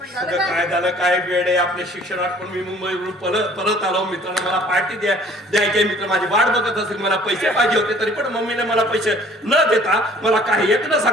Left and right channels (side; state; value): both; normal; correlation 0.53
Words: झालं सगळं काय? काय झालं काय वेळ आहे आपल्या शिक्षणात पण मी मुंबईवरून परत आलो. मित्रांनो मला पार्टी द्यायची मित्र माझी वाट बघत असेल. मला पैसे पाहिजे होते तरी पण मम्मीने मला पैसे न देता मला काही एक न